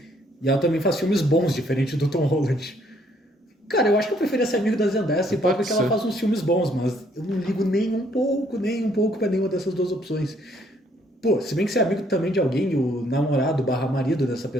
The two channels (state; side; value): normal; both; correlation 0.66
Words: E ela também faz filmes bons, diferente do Tom Holland. Cara, eu acho que eu preferia ser amigo da Zendaya, se pá, porque ela ser. faz uns filmes bons, mas eu não ligo nem um pouco pra nenhuma dessas duas opções. Pô, se bem que ser amigo também de alguém, e o namorado barra marido dessa